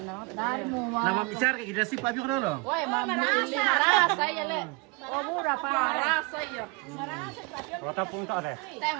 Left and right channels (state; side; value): quieter; left; 28.0 dB